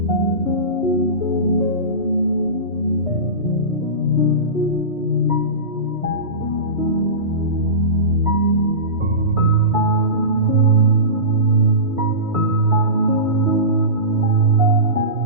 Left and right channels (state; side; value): late; left; 3.2 ms